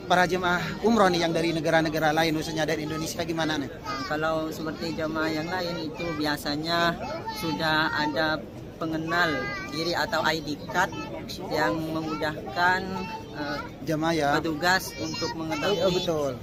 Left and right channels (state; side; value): identical; both; correlation 1.00